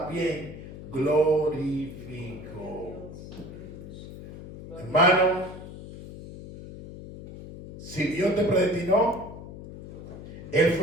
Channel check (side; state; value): left; noise; hum, 13 dB below the sound